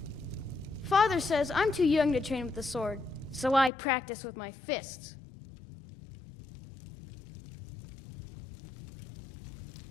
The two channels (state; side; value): drops out; right; at 3.7 s